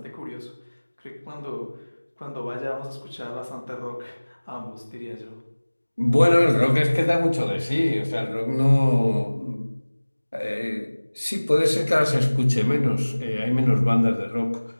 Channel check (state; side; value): inverted; both; correlation -1.00